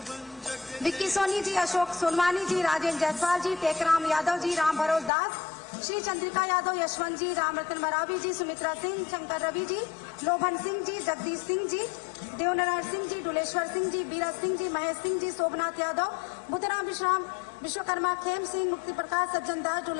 विक्की सोनी जी, अशोक सोनवानी जी, राजेंद्र जायसवाल जी, टेकराम यादव जी, राम भरोस दास, श्री चंद्रिका यादव, यशवंत जी, राम रतन मरावी जी, सुमित्रा सिंह, शंकर रवि जी, लोभन सिंह जी, जगदीश सिंह जी, देवनारायण सिंह जी, डुलेश्वर सिंह जी, बीरज सिंह जी, महेश सिंह जी, शोभनाथ यादव, बुद्धराम विश्राम, विश्वकर्मा, खेम सिंह, मुक्ति प्रकाश, सज्जन दास,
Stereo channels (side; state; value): right; drops out; at 5.1 s